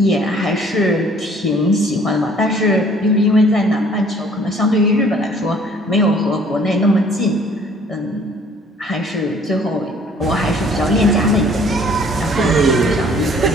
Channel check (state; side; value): normal; both; correlation 0.56